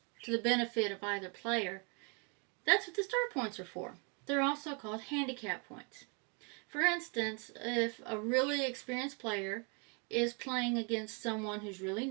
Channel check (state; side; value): quieter; left; 35.1 dB